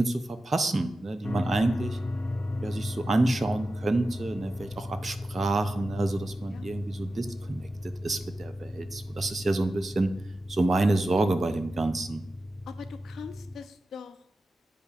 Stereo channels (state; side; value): normal; both; correlation 0.93